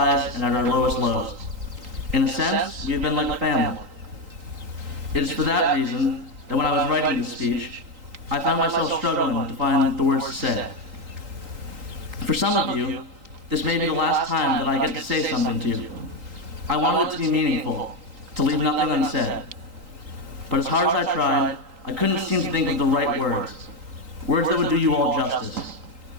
and at our lowest lows. In a sense, we have been like a family. It is for that reason that when I was writing this speech, I found myself struggling to find the words to say. For some of you, this may be the last time that I get to say something to you. I wanted it to be meaningful, to leave nothing unsaid. But as hard as I tried, I couldn't seem to think of the right words. Words that would do you all justice.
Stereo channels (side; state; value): left; late; 3.8 ms